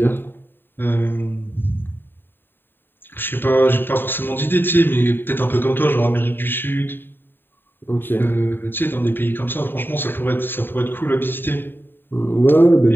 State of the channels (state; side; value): late; right; 0.096 ms